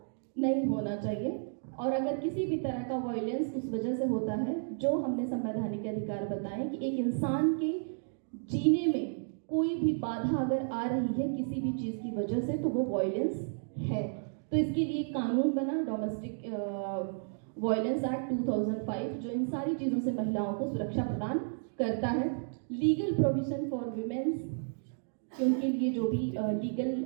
नहीं होना चाहिए। और अगर किसी भी तरह का वायलेंस उस वजह से होता है, जो हमने संवैधानिक अधिकार बताए कि एक इंसान के जीने में कोई भी बाधा अगर आ रही है किसी भी चीज़ की वजह से तो वो वायलेंस है। तो इसके लिए कानून बना डोमेस्टिक वायलेंस एक्ट 2005 जो इन सारी चीज़ों से महिलाओं को सुरक्षा प्रदान करता है। लीगल प्रोविजन फॉर विमेंस, उनके लिए जो भी लीगल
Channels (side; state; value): left; silent; digital silence